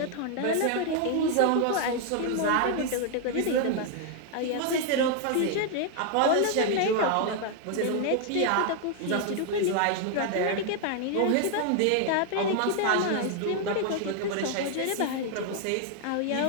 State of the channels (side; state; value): both; different; correlation 0.00